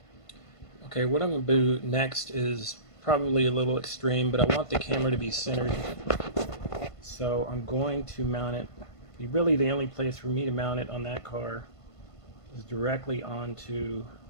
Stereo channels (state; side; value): late; right; 1.5 ms